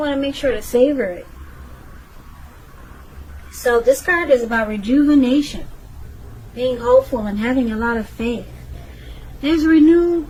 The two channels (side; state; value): both; identical; correlation 1.00